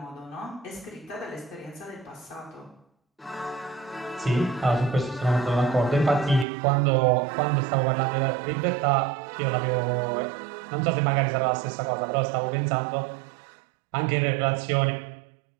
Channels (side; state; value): left; drops out; at 6.5 s